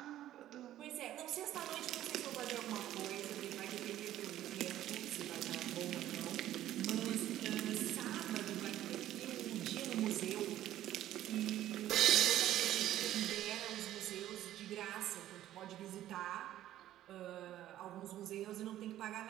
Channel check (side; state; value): left; quieter; 13.1 dB